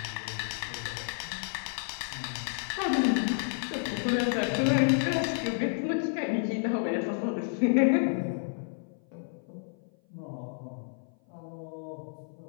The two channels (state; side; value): silent; right; 55 dB below the other